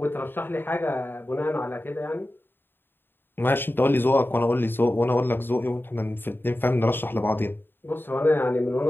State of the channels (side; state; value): right; late; 0.098 ms